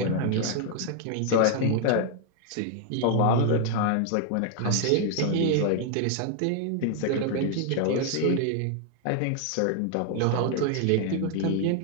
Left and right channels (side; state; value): both; different; correlation 0.00